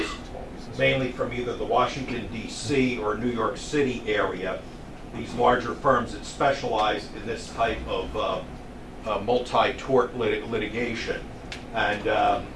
mainly from either the Washington, D.C. or New York City area. These larger firms that specialize in this type of multi-tort litigation. And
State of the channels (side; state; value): both; identical; correlation 1.00